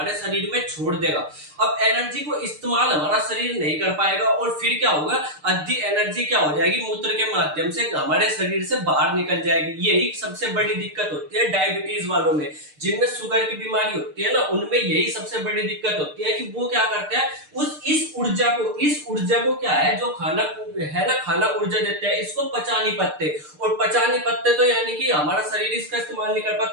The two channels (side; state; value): left; late; 6.6 ms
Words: शरीर में छोड़ देगा। अब एनर्जी को इस्तेमाल हमारा शरीर नहीं कर पाएगा और फिर क्या होगा, आधी एनर्जी क्या हो जाएगी, मूत्र के माध्यम से हमारे शरीर से बाहर निकल जाएगी। यही सबसे बड़ी दिक्कत होती है डायबिटीज वालों में, जिनमें शुगर की बीमारी होती है ना, उनमें यही सबसे बड़ी दिक्कत होती है कि वो क्या करते हैं, इस ऊर्जा को क्या है, जो खाना है ना, खाना ऊर्जा देते हैं, इसको पचा नहीं पाते, और पचा नहीं पाते तो यानी कि हमारा शरीर इसका इस्तेमाल नहीं कर